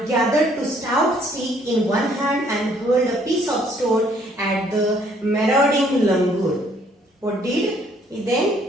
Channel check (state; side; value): normal; both; correlation 0.64